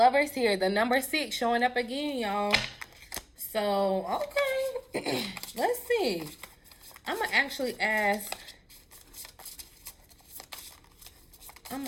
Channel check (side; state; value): both; identical; correlation 1.00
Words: here. The number 6 showing up again, y'all. So, okay. Let's see. I'm going to actually ask